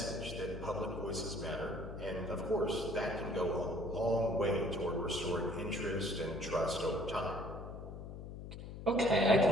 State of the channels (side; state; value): left; noise; hum, 10 dB below the sound